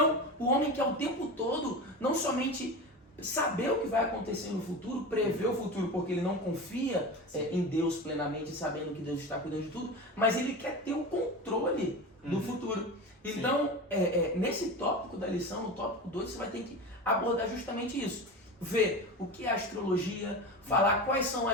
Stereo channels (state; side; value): normal; both; correlation 0.27